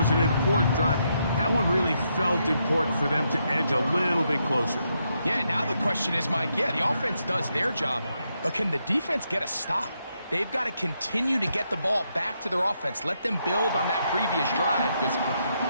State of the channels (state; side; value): inverted; both; correlation -0.80